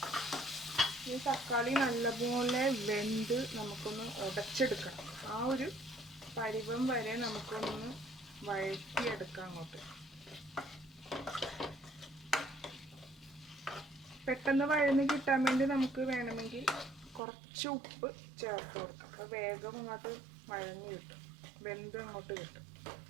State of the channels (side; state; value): left; drops out; at 17.2 s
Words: ഈ തക്കാളി നല്ലപോലെ വെന്ത് നമുക്കൊന്ന് ഉടച്ചെടുക്കണം. ആ ഒരു പരുവം വരെ നമുക്കൊന്ന് വഴറ്റിയെടുക്കാം അങ്ങോട്ട്. പെട്ടെന്ന് വഴന്ന് കിട്ടാൻ വേണ്ടി നമുക്ക് വേണമെങ്കിൽ കുറച്ച് ഉപ്പ് ചേർത്ത് കൊടുക്കാം. അപ്പോൾ വേഗം അങ്ങോട്ട് വഴഞ്ഞ് കിട്ടും, വെന്ത് അങ്ങോട്ട് കിട്ടും.